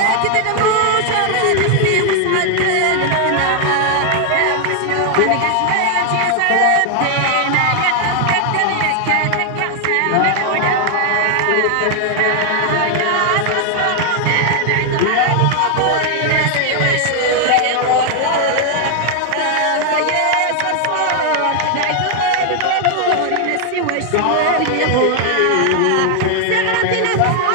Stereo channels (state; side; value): different; both; correlation 0.00